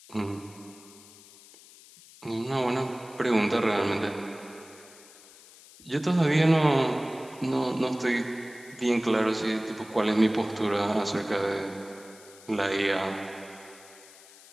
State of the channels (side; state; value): left; noise; hiss, 22 dB below the sound